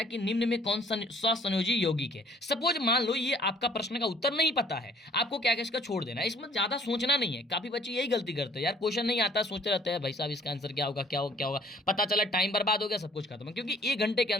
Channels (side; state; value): both; normal; correlation 0.57